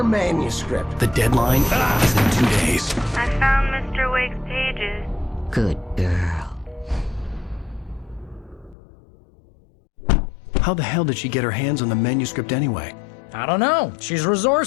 manuscript. The deadline is in 2 days. I found Mr. Wake's pages. Good girl. How the hell did she get her hands on the manuscript anyway? I don't know. She's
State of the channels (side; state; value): right; drops out; at 8.8 s